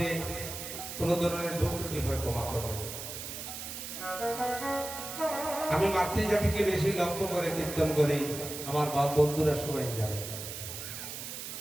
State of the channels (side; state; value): right; noise; hiss, 8 dB below the sound